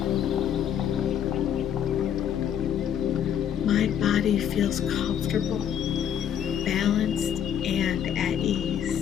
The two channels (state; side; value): quieter; right; 9.2 dB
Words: My body feels comfortable, balanced, and at